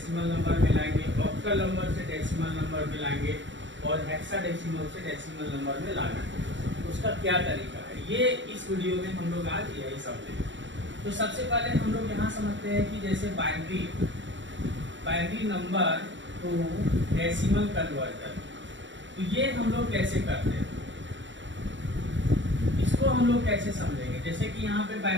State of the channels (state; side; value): late; left; 0.54 ms